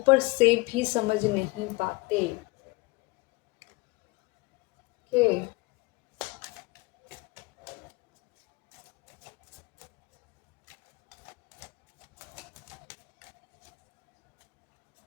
से भी समझ नहीं पाते। ओके,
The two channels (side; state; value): right; quieter; 24.1 dB